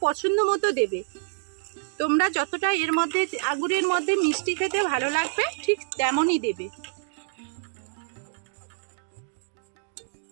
পছন্দ মতো দেবে। তোমরা যতটা এর মধ্যে আঙুরের মধ্যে মিষ্টি খেতে ভালো লাগবে ঠিক তেমনই দেবে।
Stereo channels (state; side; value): silent; left; digital silence